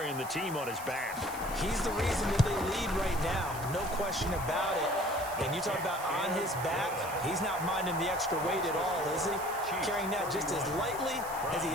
the team on his back. He's the reason that they lead right now. No question about it. And you talk about on his back, he's not minding the extra weight at all, is he? Carrying that just as lightly as he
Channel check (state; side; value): noise; right; hiss, 13 dB below the sound